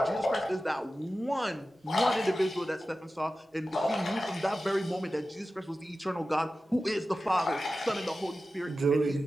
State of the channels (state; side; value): normal; both; correlation 0.94